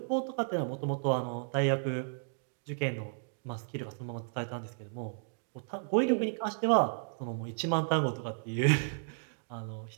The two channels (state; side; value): silent; left; digital silence